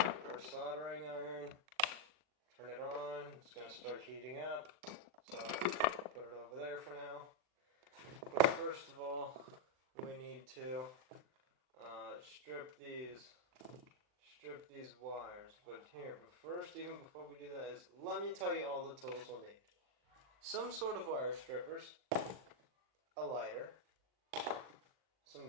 soldering iron. Turn it on, it's going to start heating up, so put it over there for now. But first of all, we need to strip these wires. But first, even before we do that, let me tell you all the tools we'll need. Some sort of wire strippers, a lighter, some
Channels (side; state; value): left; late; 39 ms